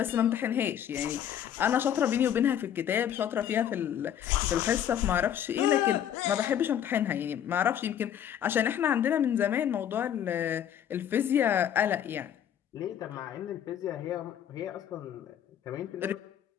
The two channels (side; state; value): right; quieter; 9.8 dB